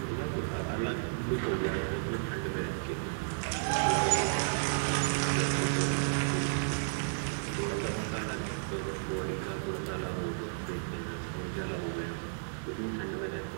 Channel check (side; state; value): left; silent; digital silence